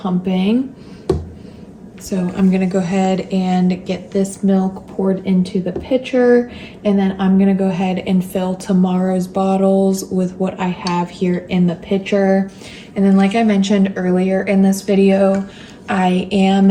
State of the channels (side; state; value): both; identical; correlation 1.00